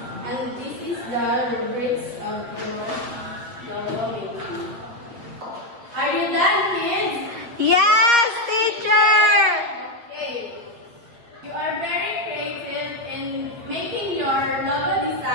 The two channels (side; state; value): left; late; 8.5 ms